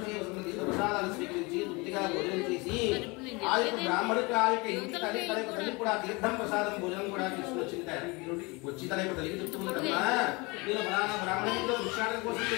ప్రసాదాలు స్వీకరించి తృప్తిగా భోజనం చేసి ఆ యొక్క బ్రాహ్మణుడికి ఆ యొక్క ఇంటి తల్లి కూడా తీర్థం ప్రసాదం భోజనం కూడా తీసుకుని వచ్చింది. వచ్చి తన యొక్క తల్లికి చెప్తుందమ్మా, నేను బ్రాహ్మణుడిలో భిక్షాటన కోసం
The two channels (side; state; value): right; quieter; 26.3 dB